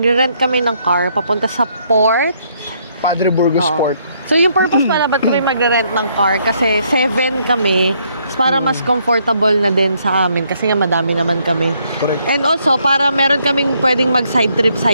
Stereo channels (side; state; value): both; inverted; correlation -0.71